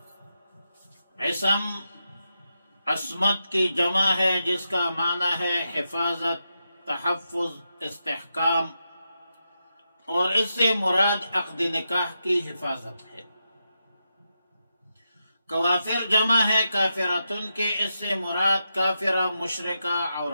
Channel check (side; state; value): both; inverted; correlation -0.87